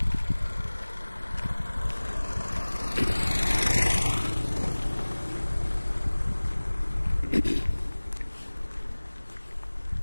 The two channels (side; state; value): both; inverted; correlation -1.00